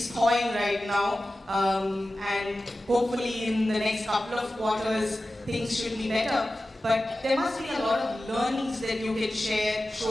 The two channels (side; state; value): both; normal; correlation 0.95